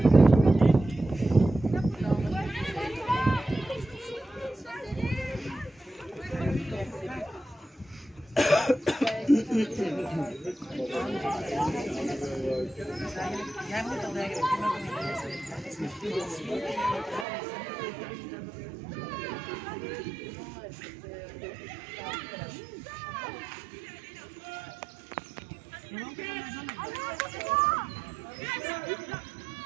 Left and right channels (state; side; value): drops out; left; at 17.2 s